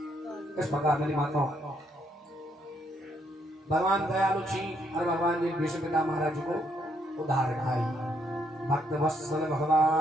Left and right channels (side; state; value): both; normal; correlation 0.73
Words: इस प्रकार मेरी माताओं भगवान दयालु छी और भगवान ने भीष्म पिता महाराज को उद्धार खाई भक्त वत्सल